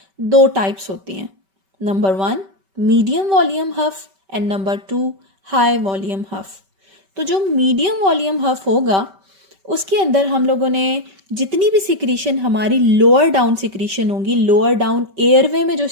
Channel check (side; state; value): left; late; 5.2 ms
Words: 2 टाइप्स होती हैं। Number 1 medium volume huff and number 2 high volume huff. तो जो मीडियम वॉल्यूम हफ होगा उसके अंदर हम लोगों ने जितनी भी सिक्रीशन हमारी लोअर डाउन सिक्रीशन होगी, लोअर डाउन एयरवे में जो